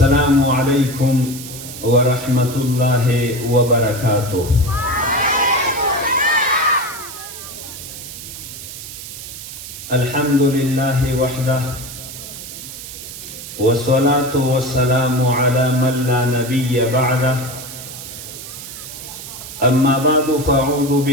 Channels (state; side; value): noise; right; hiss, 11 dB below the sound